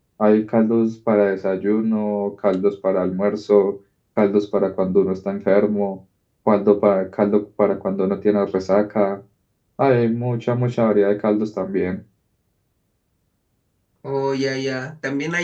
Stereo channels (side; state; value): both; identical; correlation 1.00